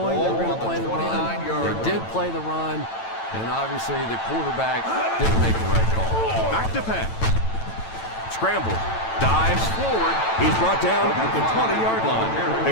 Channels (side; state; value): right; late; 9.0 ms